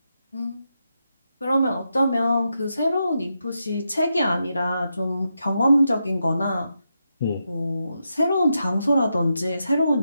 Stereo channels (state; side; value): inverted; both; correlation -0.85